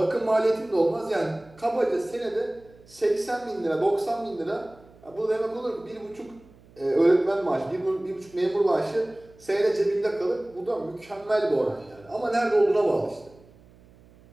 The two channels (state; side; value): noise; right; hum, 26 dB below the sound